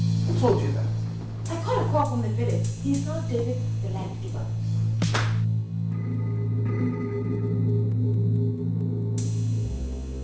Who told you that? I got a call from the village. He's not David the land giver.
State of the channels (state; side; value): identical; both; correlation 1.00